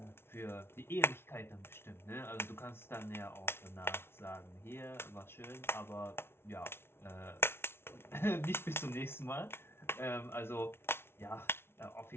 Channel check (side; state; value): right; late; 0.12 ms